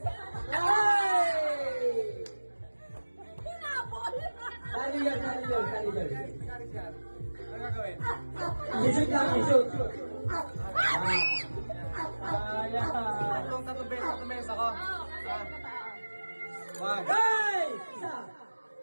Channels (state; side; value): inverted; both; correlation -1.00